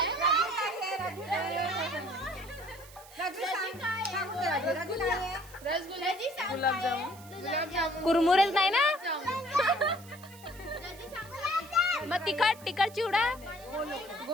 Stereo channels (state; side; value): noise; right; hiss, 20 dB below the sound